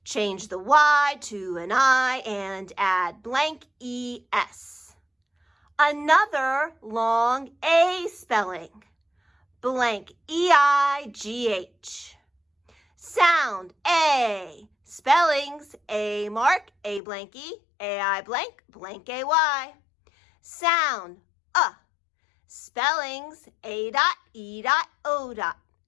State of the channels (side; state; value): right; drops out; at 17.0 s